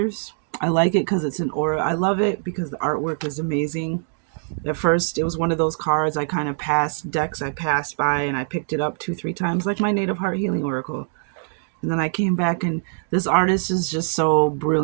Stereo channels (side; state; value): left; silent; digital silence